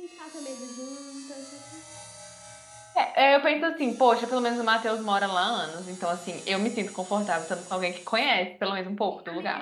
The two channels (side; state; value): both; identical; correlation 1.00